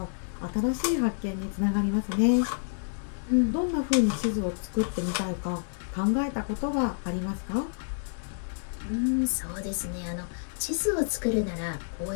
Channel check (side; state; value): right; silent; digital silence